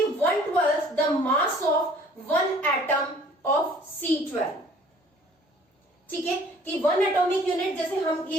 1/12 the mass of 1 atom of C12, ठीक है, कि 1 एटॉमिक यूनिट, जैसे हम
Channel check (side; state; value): both; normal; correlation 0.54